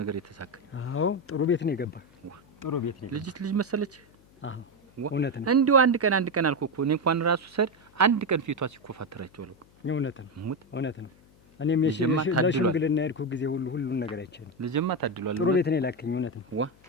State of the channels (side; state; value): left; noise; hum, 28 dB below the sound